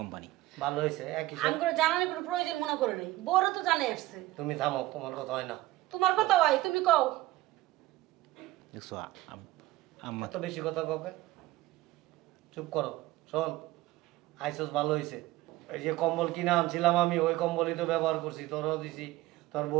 ভালো হয়েছে একই আমি করে জানানোর কোনো প্রয়োজন মনে করে নাই, বড় তো জানে আসছে। তুমি থামো তোমার কথা হয় না তোমার কথা ভাই তুমি কও। দেখছো আম্মা এত বেশি কথা কবে চুপ করো শোন আইসস ভালো হয়েছে এই যে কম্বল কিনে আনছিলাম আমি ওই কম্বলই তো ব্যবহার করছি তোরও দিছি তোর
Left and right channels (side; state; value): left; quieter; 17.4 dB